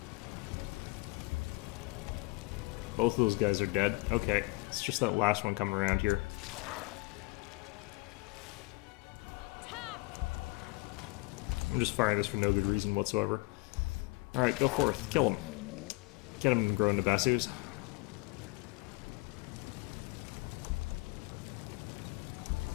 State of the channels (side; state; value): right; quieter; 24.4 dB